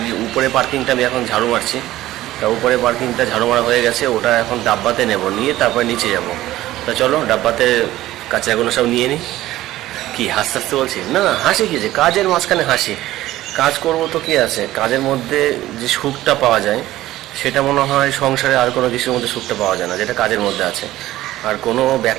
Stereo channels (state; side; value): quieter; left; 15.4 dB